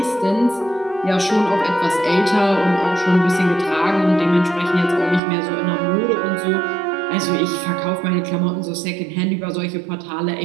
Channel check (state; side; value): drops out; left; at 5.2 s